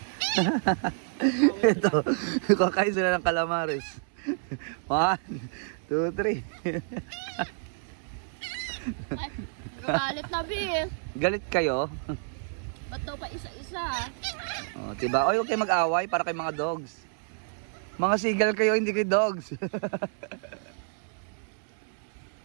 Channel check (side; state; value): left; silent; 59 dB below the other